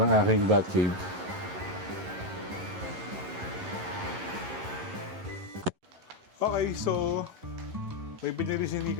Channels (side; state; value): left; late; 11 ms